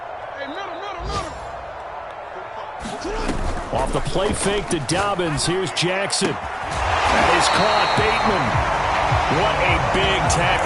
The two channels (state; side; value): identical; both; correlation 1.00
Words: Off the play fake to Dobbins. Here's Jackson. That is caught. Bateman. What a big